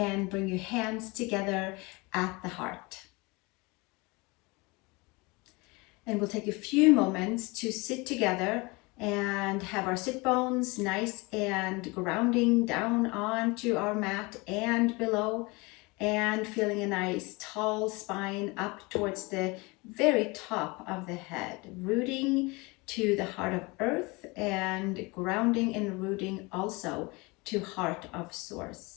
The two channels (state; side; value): quieter; right; 25.7 dB